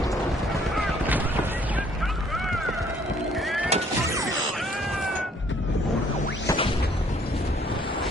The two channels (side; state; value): both; normal; correlation 0.62